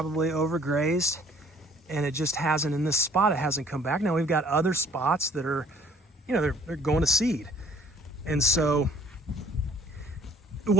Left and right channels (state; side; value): normal; both; correlation 0.55